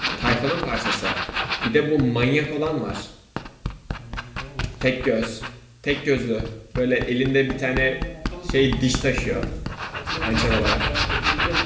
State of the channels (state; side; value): identical; both; correlation 1.00